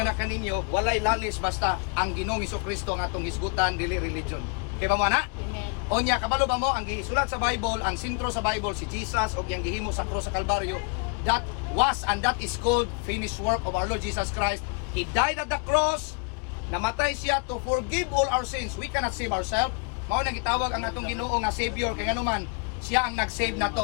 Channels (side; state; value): right; quieter; 34.0 dB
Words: na kaninyo walay lalis basta ang Ginoong Hesukristo ang atong hisgutan dili religion. Kay ba mo ana? Onya kabalo ba mo ang gisulat sa Bible, ang sentro sa Bible si Jesus og yang gihimo sa krus sa Kalbaryo. That was and that is called finished work of our Lord Jesus Christ. He died at the cross. Namatay siya to forgive all our sins. We cannot save ourselves. Mao nang gitawag ang atong Ginoo nga Savior kay nganuman siya ang nag-save